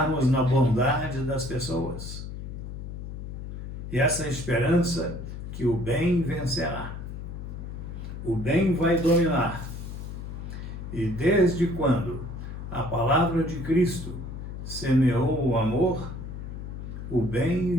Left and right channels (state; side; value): noise; left; hum, 8 dB below the sound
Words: na bondade das pessoas. E essa esperança que o bem vencerá. O bem vai dominar. E desde quando a palavra de Cristo semeou o amor, o